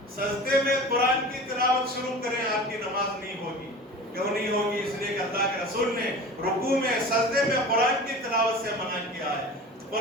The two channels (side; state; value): both; normal; correlation 0.36